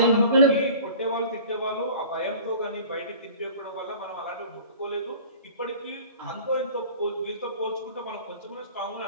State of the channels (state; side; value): inverted; both; correlation -0.43